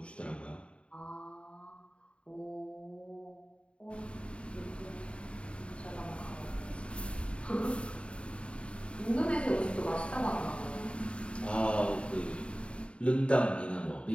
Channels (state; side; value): late; right; 0.058 ms